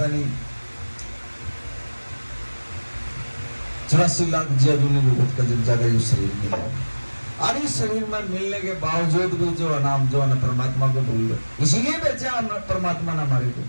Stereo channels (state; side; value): inverted; both; correlation -1.00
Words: नहीं 84 लाख जीवों का जब जाकर ये शरीर मिला। और इस शरीर में मिलने के बावजूद भी जो नाम जो है परमात्मा को भूल गए, इसीलिए बेचा परमात्मा ने हमारे को।